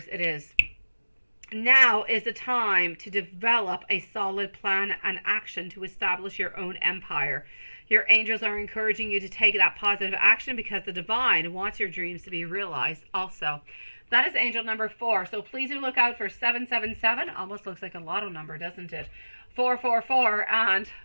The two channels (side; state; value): both; inverted; correlation -1.00